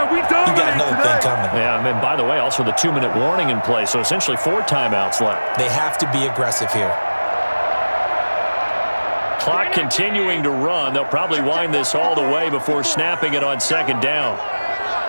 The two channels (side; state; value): both; inverted; correlation -1.00